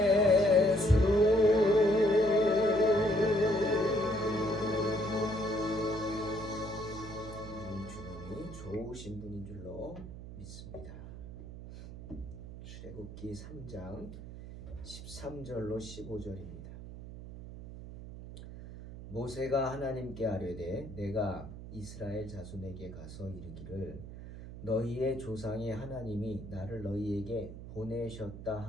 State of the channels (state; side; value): noise; right; hum, 12 dB below the sound